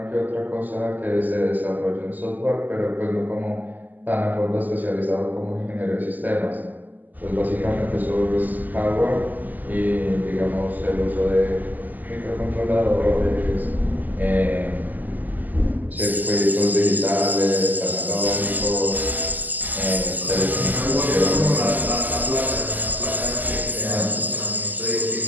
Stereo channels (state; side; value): late; left; 0.084 ms